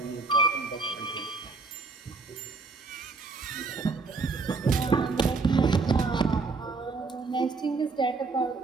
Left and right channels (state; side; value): quieter; left; 4.1 dB